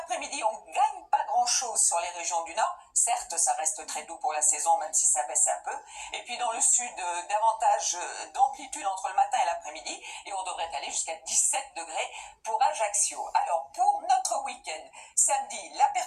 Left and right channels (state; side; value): identical; both; correlation 1.00